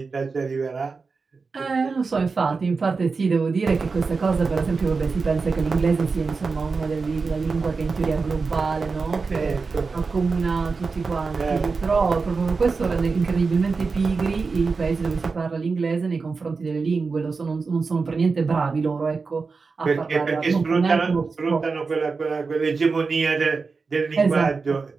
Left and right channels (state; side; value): quieter; left; 4.5 dB